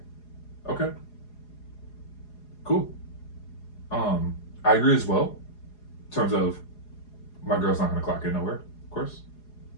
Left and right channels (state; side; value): late; right; 4.8 ms